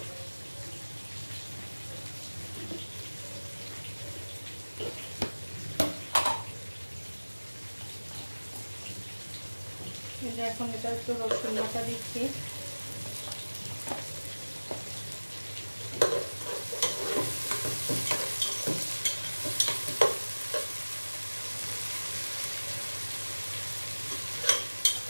এখন এটা একটু রসুন বাটা দিচ্ছি,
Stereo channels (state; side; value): inverted; both; correlation -1.00